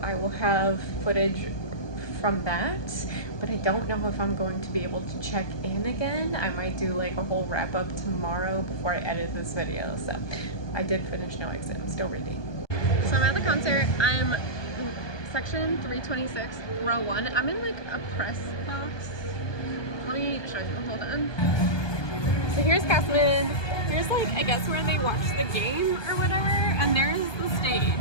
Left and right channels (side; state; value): right; late; 1.2 ms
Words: will have footage from that, but I don't know if I'm going to be able to check in again. I might do like a whole wrap-up tomorrow before I edit this video. So I did finish No Exit. I'm still reading. So I'm at the concert. I'm section 326, row 1. I'm in like a press box. Let me show you. Hold on. So here's Castman. Here's like, I guess, where they watch the game or whatever, and there's the